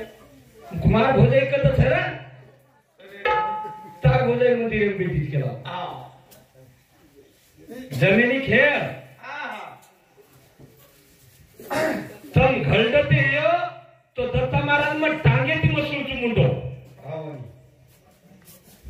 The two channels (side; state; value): both; identical; correlation 1.00